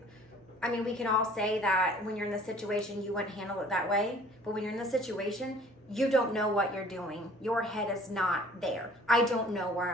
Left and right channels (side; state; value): both; normal; correlation 0.52